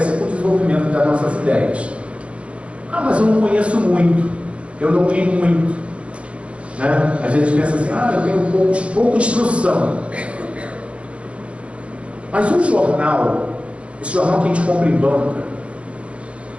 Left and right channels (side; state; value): left; late; 0.061 ms